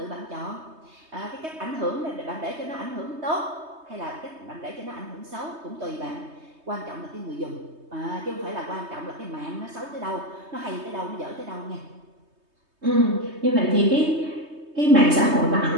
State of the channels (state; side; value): late; left; 3.2 ms